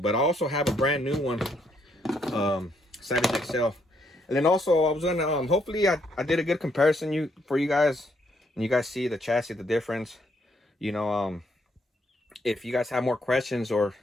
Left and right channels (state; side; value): normal; both; correlation 0.73